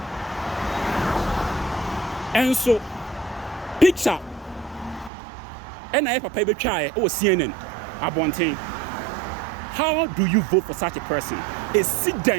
enso picture ɛna papa betwa o CNN abonten. How do you vote for such a person? A sit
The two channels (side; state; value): left; drops out; at 5.1 s